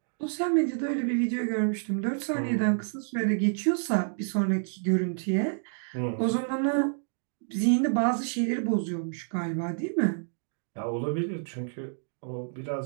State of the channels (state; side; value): silent; left; digital silence